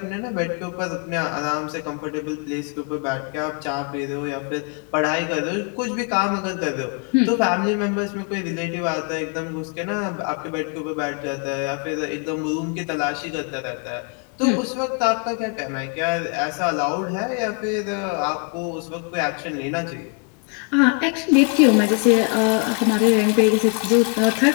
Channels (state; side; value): quieter; right; 36.1 dB